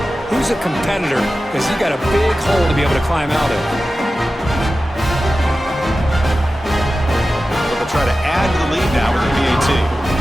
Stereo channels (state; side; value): normal; both; correlation 0.94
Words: who's a competitor, because you got a big hole to be able to climb out of. But they'll try to add to the lead now with the PAT.